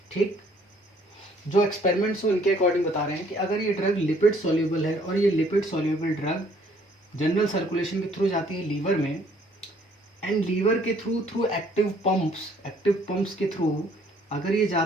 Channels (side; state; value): both; normal; correlation 0.62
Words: ठीक, जो एक्सपेरिमेंट्स उनके अकॉर्डिंग बता रहे हैं कि अगर ये ड्रग लिपिड सॉल्युबल है और ये lipid soluble drug general circulation के थ्रू जाती है लीवर में, एंड लीवर के थ्रू एक्टिव पंप्स के थ्रू अगर ये